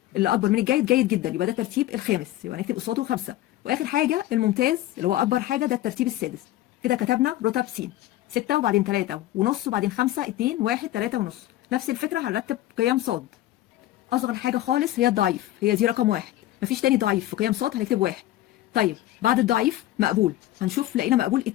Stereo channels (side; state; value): right; quieter; 14.9 dB